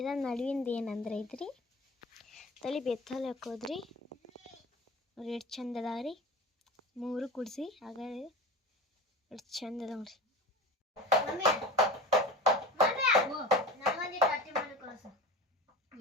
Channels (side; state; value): both; normal; correlation 0.33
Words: ನಡುವಿಂದ ಏನಂದ್ರೆ ಐತ್ರಿ ತಲೆ ಬೆತ್ತಲ್ಲಿ ಹಾಕೋದ್ರಿ. ನೋಡ್ರಿ ಎಷ್ಟು ಚಂದ ಅದಾವ್ರಿ. 3 ಕುಡಿಸಿ ಆಗ ಎಷ್ಟು ಚಂದ ಅದಾವ್ರಿ.